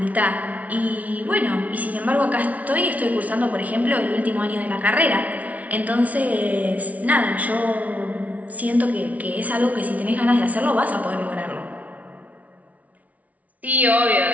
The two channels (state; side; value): late; left; 0.070 ms